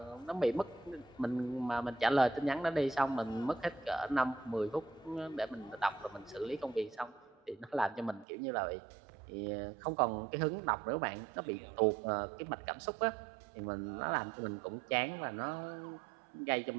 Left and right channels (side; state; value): left; drops out; at 8.2 s